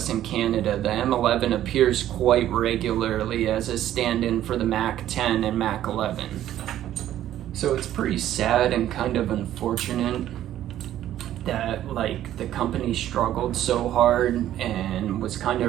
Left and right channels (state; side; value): quieter; left; 12.3 dB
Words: and Canada, the M11 appears quite regularly as a stand-in for the MAC-10 and MAC-11. So it's pretty sad and kind of unfortunate that the company struggled so hard, and was kind